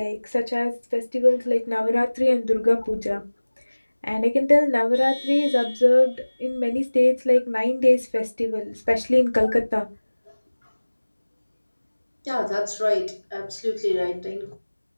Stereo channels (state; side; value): inverted; both; correlation -1.00